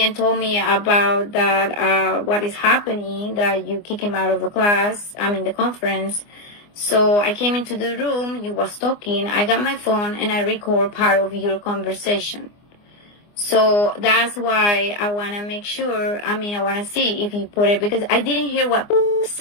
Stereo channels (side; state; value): right; late; 24 ms